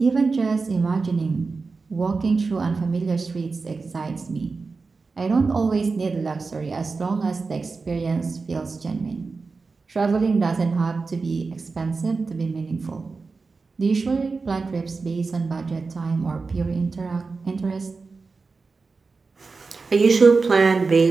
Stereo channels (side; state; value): left; quieter; 4.3 dB